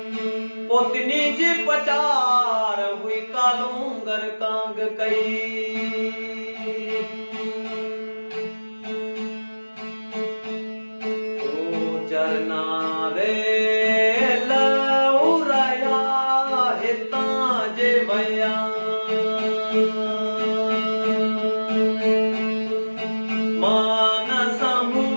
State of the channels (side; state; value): both; inverted; correlation -1.00